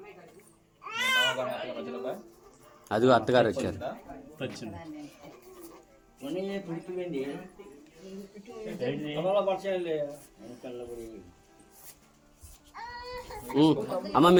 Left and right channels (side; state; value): both; identical; correlation 1.00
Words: అదిగో అత్తగారు వచ్చారు. వచ్చింది అమ్మ